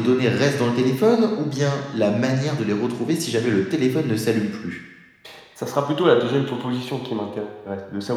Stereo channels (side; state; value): both; identical; correlation 1.00